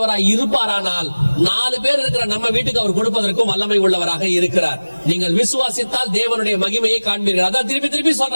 இருப்பாரானால் 4 பேர் இருக்கிற நம்ம வீட்டுக்கு அவர் கொடுப்பதற்கும் வல்லமை உள்ளவராக இருக்கிறார். நீங்கள் விசுவாசித்தால் தேவனுடைய மகிமையை காண்பீர்கள். அதான் திருப்பி திருப்பி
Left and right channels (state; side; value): inverted; both; correlation -1.00